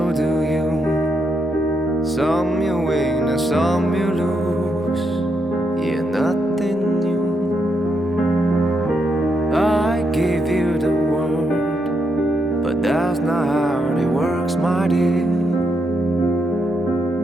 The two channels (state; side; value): normal; both; correlation 0.81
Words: do you. Some you win and some you lose. Yeah, nothing new. I give you the world, but that's not how it works, my dear.